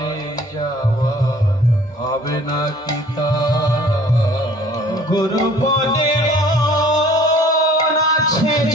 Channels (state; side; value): normal; both; correlation 0.52